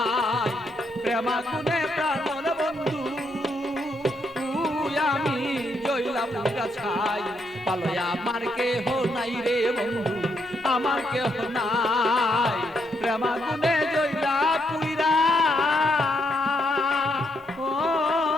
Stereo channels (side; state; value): both; normal; correlation 0.77